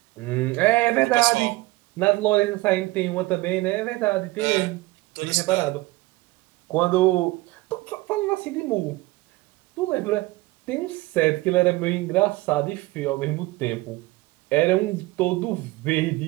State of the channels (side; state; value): left; quieter; 20.8 dB